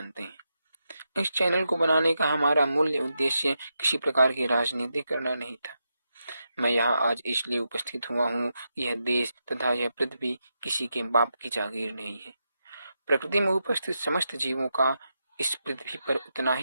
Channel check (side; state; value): both; inverted; correlation -0.86